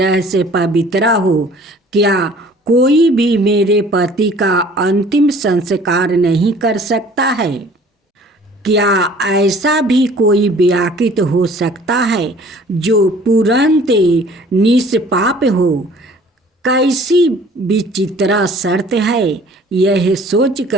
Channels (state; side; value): normal; both; correlation 0.52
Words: से पवित्र हो? क्या कोई भी मेरे पति का अंतिम संस्कार नहीं कर सकता है? क्या ऐसा भी कोई व्याकृत हो सकता है जो तुरंत निष्पाप हो? कैसी विचित्र शर्त है। यह